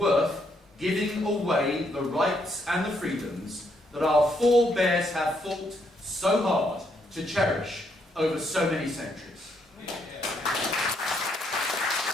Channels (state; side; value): normal; both; correlation 0.74